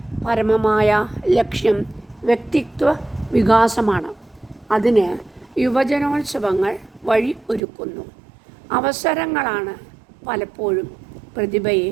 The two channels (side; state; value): left; drops out; at 7.6 s